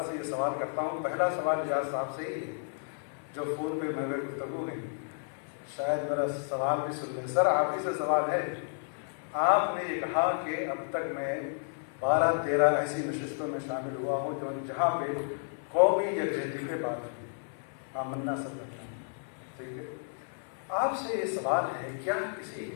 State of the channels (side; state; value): right; silent; 57 dB below the other